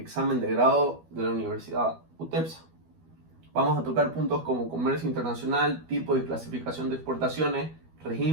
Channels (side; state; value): left; late; 12 ms